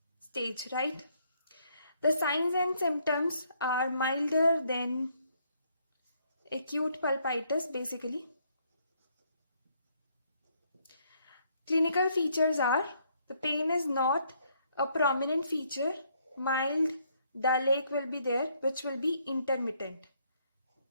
stage, right? The signs and symptoms are milder than acute pulpitis, basically. Clinical features are, the pain is not a prominent feature, mild dull ache will be there, which will be intermittent,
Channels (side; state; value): both; inverted; correlation -0.70